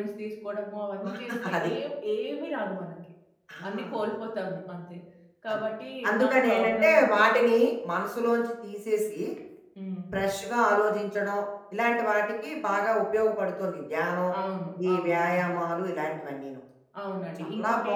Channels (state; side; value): identical; both; correlation 1.00